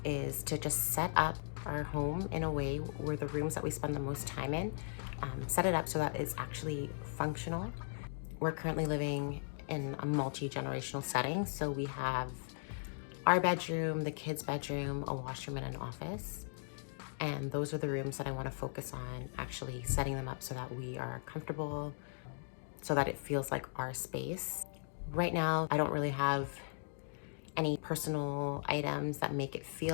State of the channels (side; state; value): right; silent; digital silence